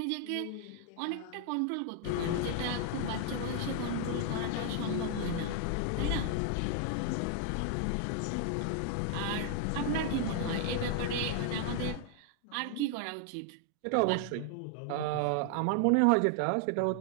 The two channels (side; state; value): both; different; correlation 0.00